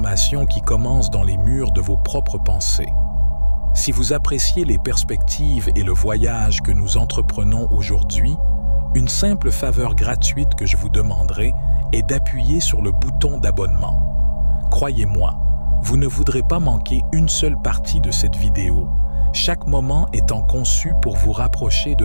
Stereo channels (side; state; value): both; inverted; correlation -1.00